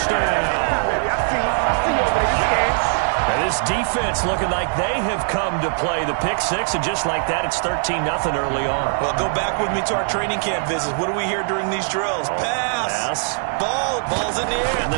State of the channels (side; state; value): left; silent; 65 dB below the other